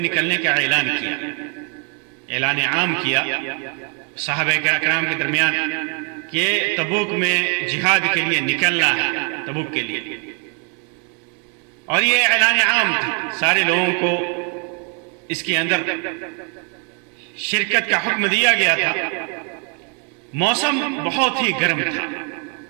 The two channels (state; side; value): quieter; left; 38.6 dB